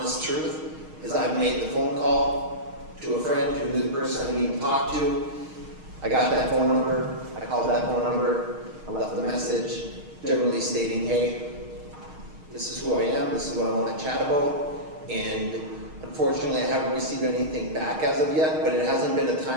truth, is I've made the phone call to a friend who knew the person I need to talk to. I got that phone number, I called that phone number, I left a message, generally stating, hey, this is who I am, this is what I want to chat about, and unfortunately I haven't received anything back as of yet, but it hasn't been a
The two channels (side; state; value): left; late; 6.5 ms